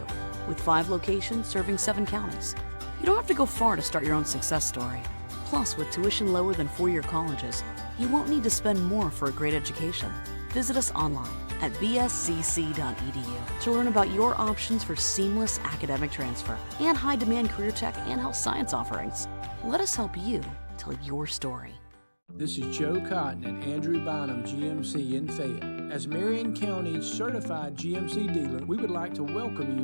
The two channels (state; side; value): inverted; both; correlation -1.00